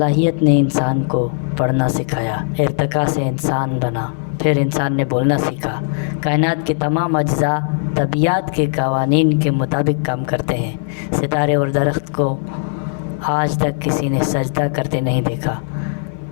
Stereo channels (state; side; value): silent; right; 57 dB below the other